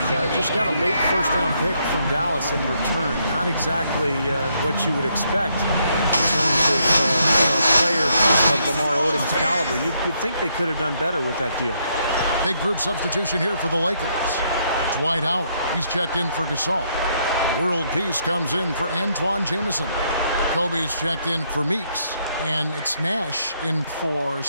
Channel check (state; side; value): inverted; both; correlation -0.74